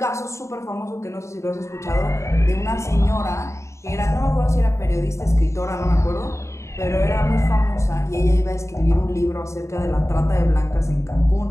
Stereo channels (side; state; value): right; late; 0.14 ms